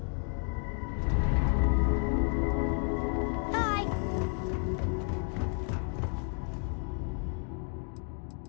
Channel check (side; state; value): right; quieter; 38.5 dB